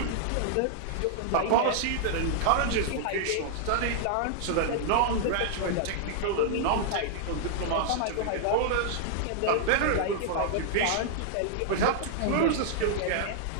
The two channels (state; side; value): different; both; correlation -0.01